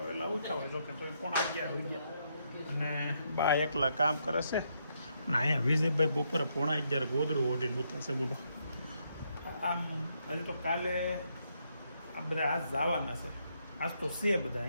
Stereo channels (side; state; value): both; inverted; correlation -0.77